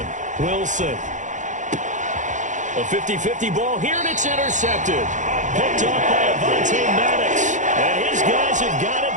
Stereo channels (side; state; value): left; late; 0.36 ms